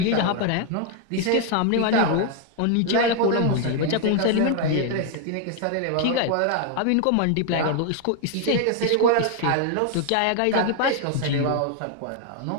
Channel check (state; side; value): different; both; correlation 0.00